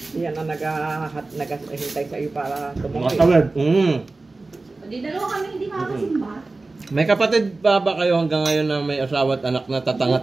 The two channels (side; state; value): left; quieter; 3.4 dB